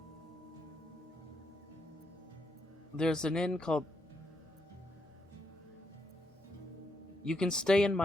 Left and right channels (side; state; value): both; normal; correlation 0.79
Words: There's an inn called... You can stay in